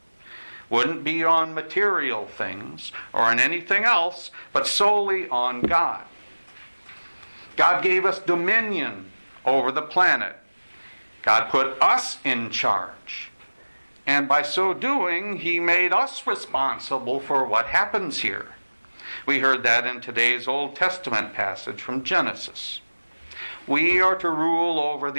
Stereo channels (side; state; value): both; inverted; correlation -1.00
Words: wouldn't be on material things or on anything else, but solely on God. God gave us dominion over the planet. God put us in charge. And by so doing, He made us responsible for what happens here. We heard that in today's Old Testament passage from Genesis. we are to rule over